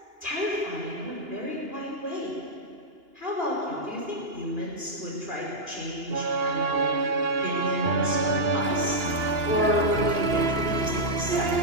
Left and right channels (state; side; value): late; left; 2.9 ms